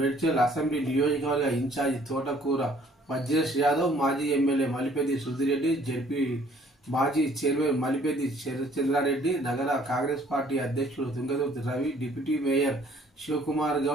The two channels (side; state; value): both; normal; correlation 0.59